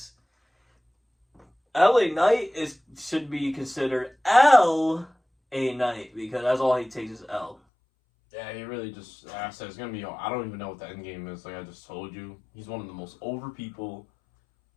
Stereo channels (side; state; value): right; drops out; at 7.6 s